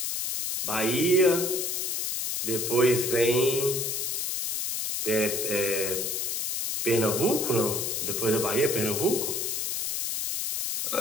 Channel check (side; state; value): left; noise; hiss, 1 dB below the sound